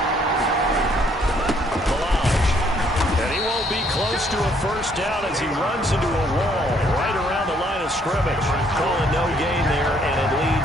And he won't be close to a 1st down as he runs into a wall right around the line of scrimmage. Calling no gain there, and it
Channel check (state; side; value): normal; both; correlation 0.66